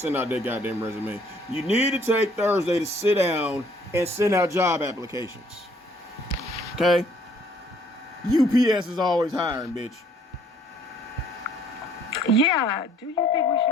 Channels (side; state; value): both; normal; correlation 0.61